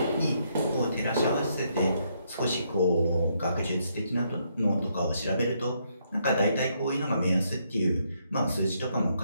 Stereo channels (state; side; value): inverted; both; correlation -0.75